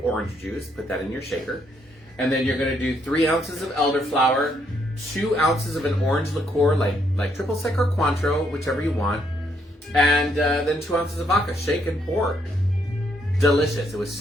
orange juice. Put that in your shaker. And then you're going to do 3 ounces of elderflower, 2 ounces of an orange liqueur, like triple sec or Cointreau, whichever you want, and then 2 ounces of vodka. Shake and pour. Delicious. It was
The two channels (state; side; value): normal; both; correlation 0.73